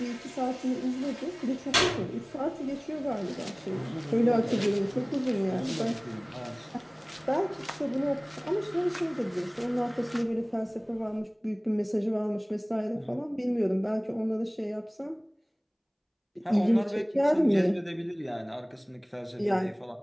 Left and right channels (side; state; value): both; identical; correlation 1.00